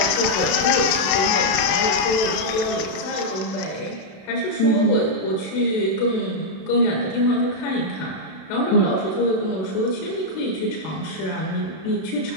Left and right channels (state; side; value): late; right; 32 ms